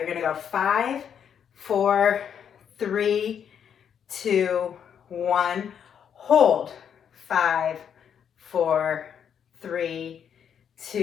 gonna go 5, 4, 3, 2, 1. Hold. 5, 4, 3,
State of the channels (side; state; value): right; quieter; 8.2 dB